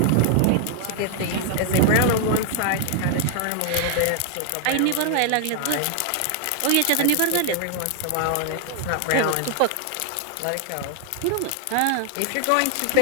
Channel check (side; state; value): both; different; correlation 0.00